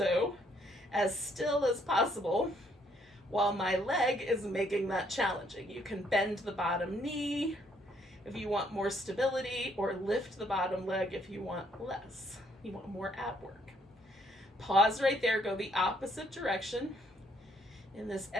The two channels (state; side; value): normal; both; correlation 0.68